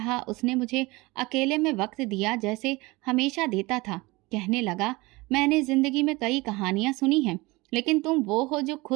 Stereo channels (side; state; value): left; quieter; 22.9 dB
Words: उसने मुझे अकेले में वक्त दिया जैसे हमेशा देता था। कहने लगा, मैंने जिंदगी में कई कहानियां सुनी हैं, लेकिन तुम वो हो जो